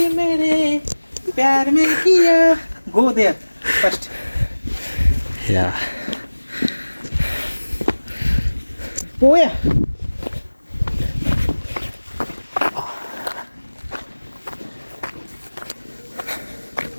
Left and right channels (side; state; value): both; inverted; correlation -1.00